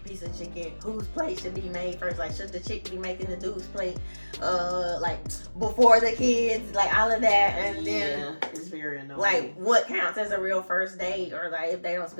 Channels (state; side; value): inverted; both; correlation -1.00